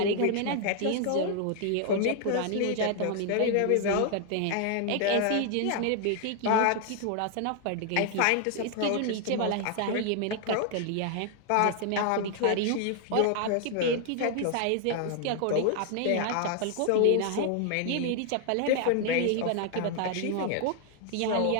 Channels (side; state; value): both; different; correlation 0.00